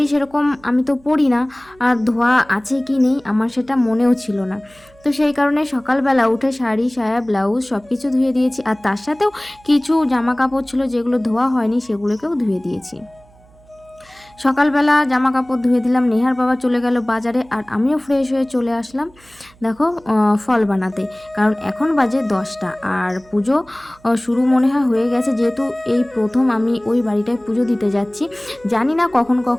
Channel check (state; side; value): noise; right; hum, 28 dB below the sound